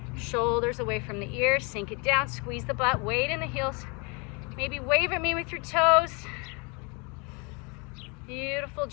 Shoulders away from the ears, sink it down, squeeze the butt, weight in the heels. Maybe wave at me with your toes. Beautiful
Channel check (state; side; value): quieter; right; 31.1 dB